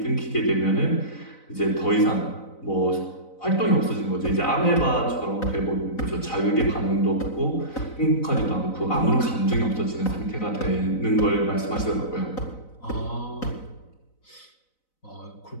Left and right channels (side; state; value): right; late; 4.0 ms